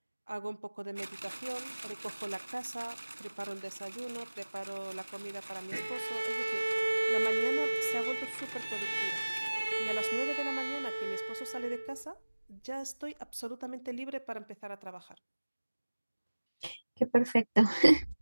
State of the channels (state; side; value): inverted; both; correlation -1.00